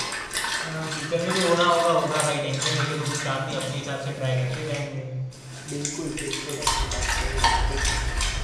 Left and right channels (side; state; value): both; identical; correlation 1.00